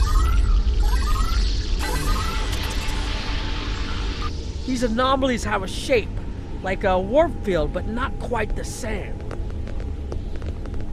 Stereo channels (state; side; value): identical; both; correlation 1.00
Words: These anomalies have a shape, like a warp field, but not quite the same.